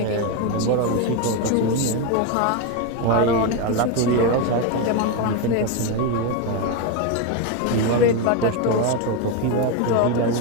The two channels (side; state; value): both; different; correlation 0.03